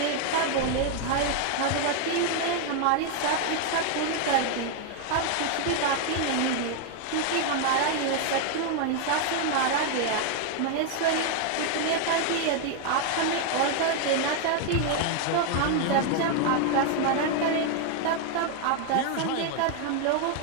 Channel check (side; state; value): both; different; correlation 0.00